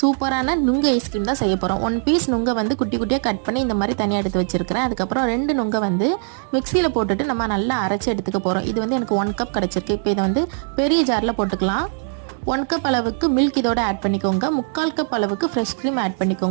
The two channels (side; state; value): left; silent; 65 dB below the other